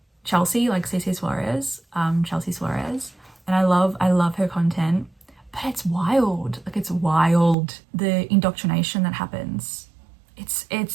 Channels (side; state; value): left; drops out; at 7.6 s